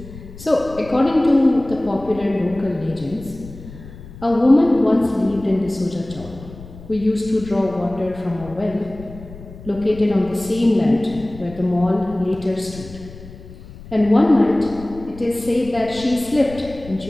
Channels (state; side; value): noise; left; rumble, 16 dB below the sound